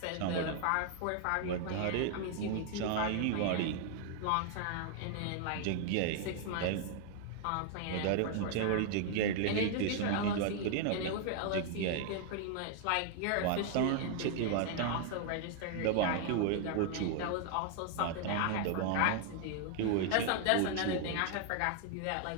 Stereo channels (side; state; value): both; different; correlation 0.00